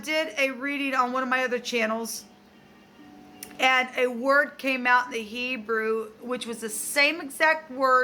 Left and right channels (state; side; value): identical; both; correlation 1.00